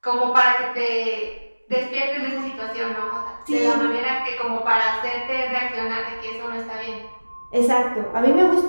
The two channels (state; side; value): inverted; both; correlation -1.00